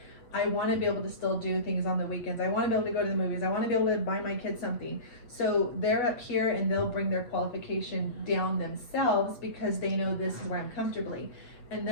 I want to be able to still do things on the weekends. I want to be able to go to the movies. I want to be able to buy my kids something. So they're up here and they'll bring their qualification down themselves because they know this is where I'm comfortably. And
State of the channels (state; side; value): late; right; 8.1 ms